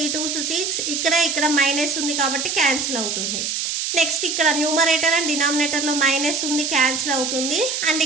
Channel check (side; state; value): right; noise; hiss, 2 dB below the sound